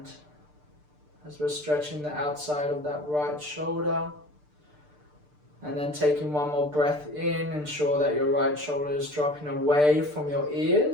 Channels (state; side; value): late; left; 6.7 ms